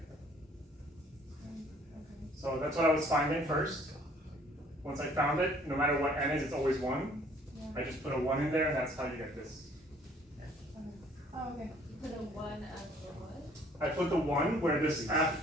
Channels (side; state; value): both; normal; correlation 0.58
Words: Okay. So that's what I was finding first. Once I found it, no matter what n is, it's always 1. Yeah. I just put a 1 in there, and that's how you get this. Okay. Oh, okay. Put a 1 after what? I put the 1 where this